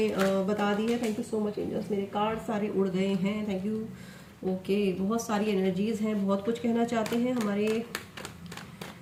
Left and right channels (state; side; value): identical; both; correlation 1.00